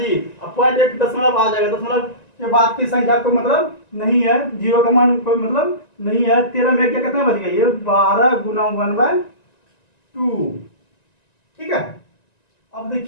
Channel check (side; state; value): right; late; 1.9 ms